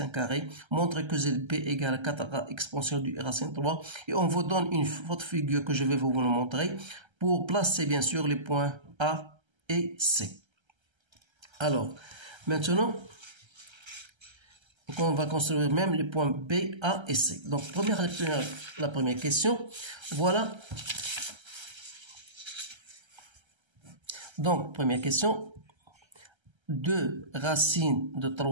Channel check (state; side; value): late; left; 1.3 ms